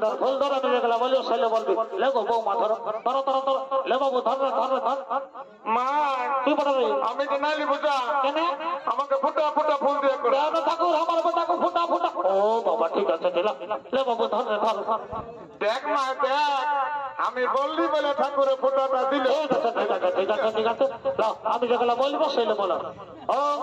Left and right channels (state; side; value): identical; both; correlation 1.00